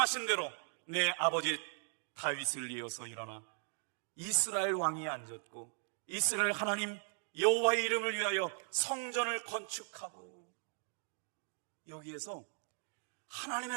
대로 내 아버지 다윗을 이어서 일어나 이스라엘 왕이 앉았고 이스라엘 하나님 여호와의 이름을 위하여 성전을 건축하고. 여기에서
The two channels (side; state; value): left; silent; 52 dB below the other